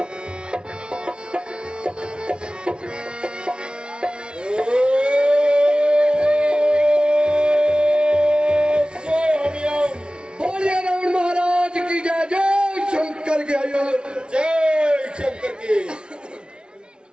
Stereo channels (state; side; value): late; left; 0.056 ms